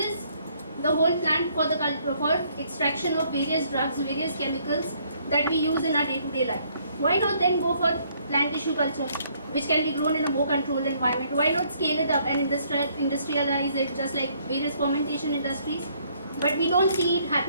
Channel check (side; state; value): both; inverted; correlation -0.66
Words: the whole plant for extraction of various drugs, various chemicals that we use in our day-to-day life. Why not then go for plant tissue culture, which can be grown in a more controlled environment? Why not scale it up and industrialize it just like various fermentation industries? But we don't see it